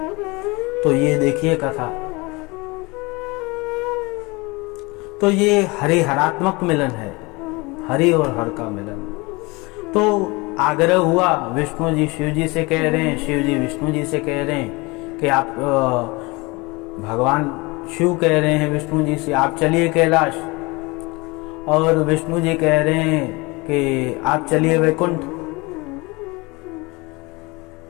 तो ये देखिए कथा, तो ये हरिहरात्मक मिलन है, हरि और हर का मिलन। तो आग्रह हुआ, विष्णु जी शिव जी से कह रहे हैं, शिव जी विष्णु जी से कह रहे हैं कि आप भगवान शिव कह रहे हैं विष्णु जी से आप चलिए कैलाश, और विष्णु जी कह रहे हैं कि आप चलिए वैकुंठ।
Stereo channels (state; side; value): quieter; right; 25.2 dB